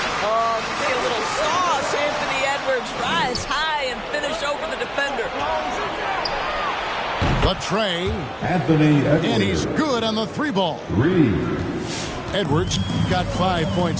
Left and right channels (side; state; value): both; identical; correlation 1.00